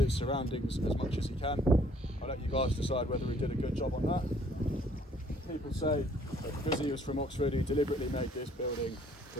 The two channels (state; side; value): normal; both; correlation 0.60